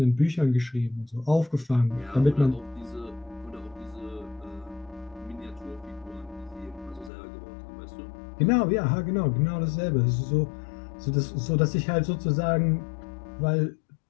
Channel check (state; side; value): drops out; right; at 7.1 s